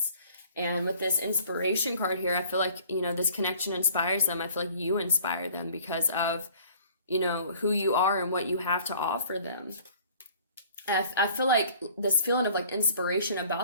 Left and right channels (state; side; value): inverted; both; correlation -0.51